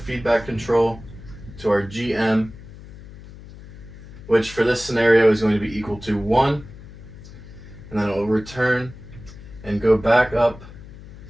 control to our GM, which for this scenario is going to be equal to 1, and then it will return and go back up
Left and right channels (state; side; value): noise; left; hum, 17 dB below the sound